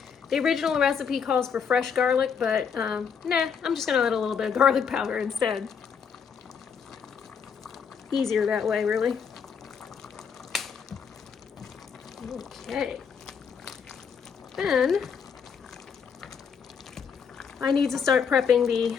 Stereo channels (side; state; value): right; quieter; 6.7 dB